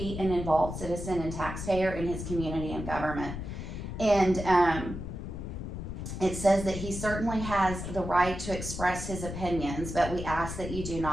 an involved citizen and taxpayer in his community and government. And it says that he certainly has the right to express his opinions, but we ask that you do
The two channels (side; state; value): left; noise; rumble, 7 dB below the sound